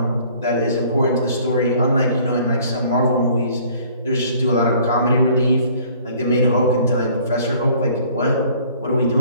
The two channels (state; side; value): inverted; both; correlation -0.55